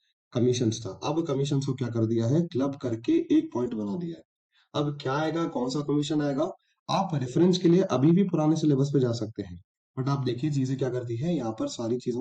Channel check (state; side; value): identical; both; correlation 1.00